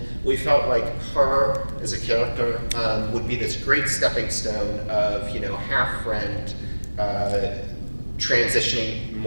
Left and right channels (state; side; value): inverted; both; correlation -1.00